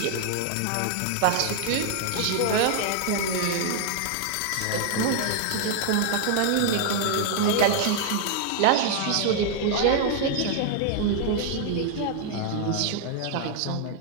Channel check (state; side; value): different; both; correlation 0.00